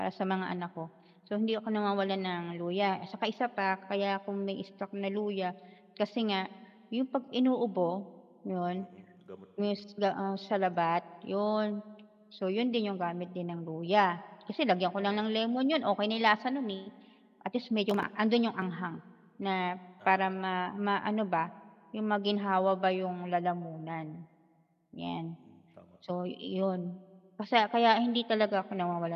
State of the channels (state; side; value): identical; both; correlation 1.00